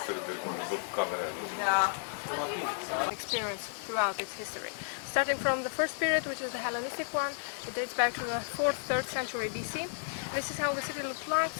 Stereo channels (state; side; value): silent; right; digital silence